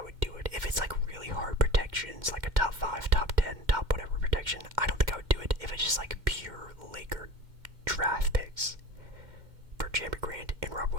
would do it. If it's like really hard protections, like a top 5, top 10, top whatever protection, I don't think I would do it. If it's just like pure Laker draft picks for Jeremy Grant and Rob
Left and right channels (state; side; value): late; left; 2.1 ms